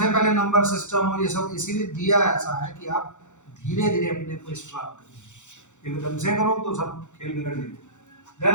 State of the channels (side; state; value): right; late; 0.85 ms